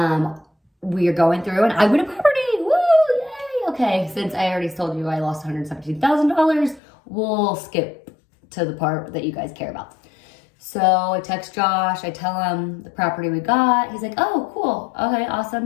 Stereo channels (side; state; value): right; drops out; at 6.8 s